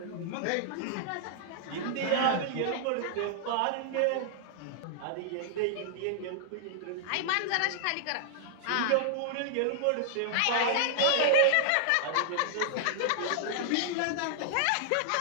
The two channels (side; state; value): both; different; correlation -0.01